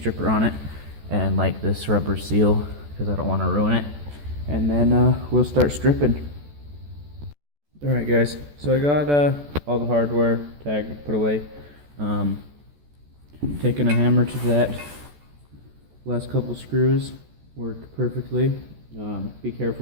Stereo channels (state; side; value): late; left; 14 ms